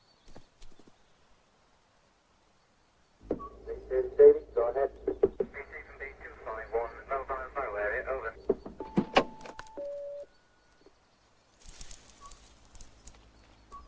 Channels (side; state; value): both; identical; correlation 1.00